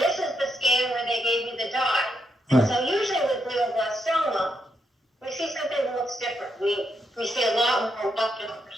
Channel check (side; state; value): both; normal; correlation 0.80